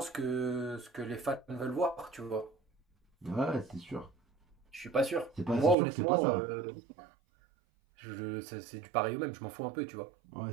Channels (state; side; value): drops out; left; at 5.8 s